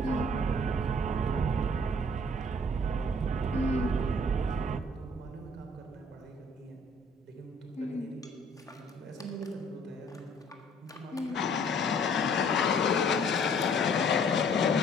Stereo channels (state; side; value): normal; both; correlation 0.57